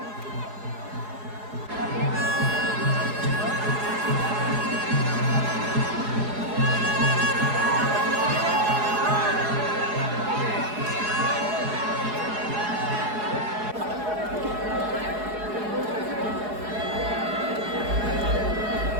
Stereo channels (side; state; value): left; late; 4.8 ms